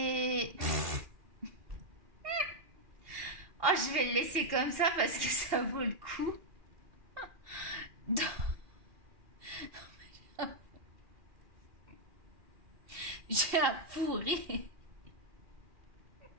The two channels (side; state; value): left; late; 2.4 ms